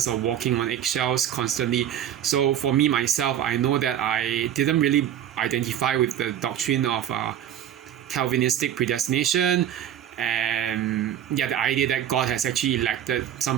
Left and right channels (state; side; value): quieter; left; 10.4 dB